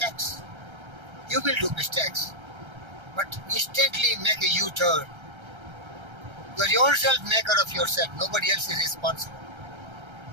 You will do mistakes. But instantly make a U-turn. You are yourself maker of yourself. Nobody else is responsible.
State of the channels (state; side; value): late; left; 1.3 ms